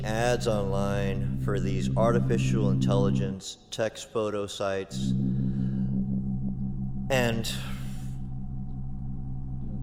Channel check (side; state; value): both; identical; correlation 1.00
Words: ads online for these artificial intelligence text photo sites and